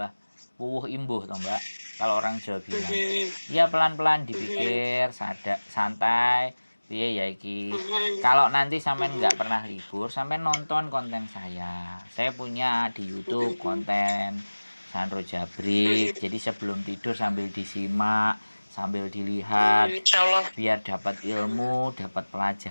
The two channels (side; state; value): both; inverted; correlation -1.00